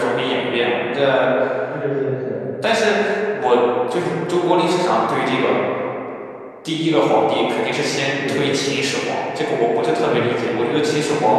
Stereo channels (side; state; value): both; identical; correlation 1.00